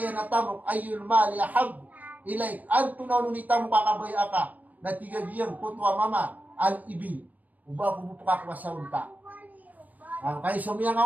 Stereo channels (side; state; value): left; late; 0.078 ms